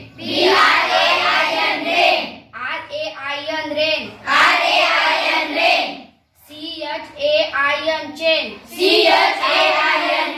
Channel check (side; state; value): both; identical; correlation 1.00